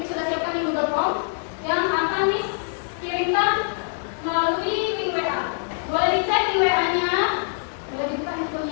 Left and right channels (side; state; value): right; silent; 63 dB below the other